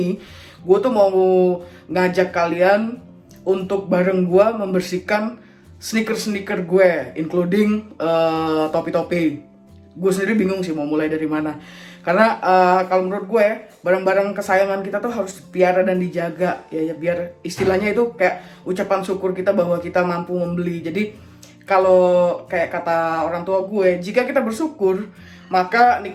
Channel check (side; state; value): both; identical; correlation 1.00